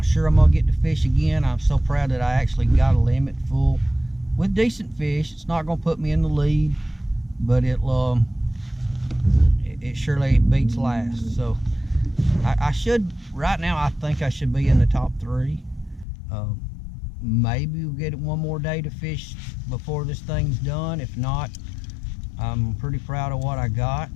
sure I'm gonna get to fish again. I'm so proud that I actually got a limit full with decent fish. It's not gonna put me in the lead, but it surely beats last. So I should, right now, I think I should be in the top 3. Maybe we'll get one more day to fish before this thing's done. If not, I'm pretty proud of what I got.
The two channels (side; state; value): right; drops out; at 16.1 s